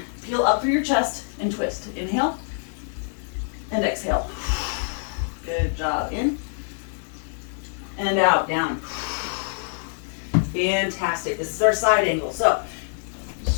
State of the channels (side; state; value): right; silent; 61 dB below the other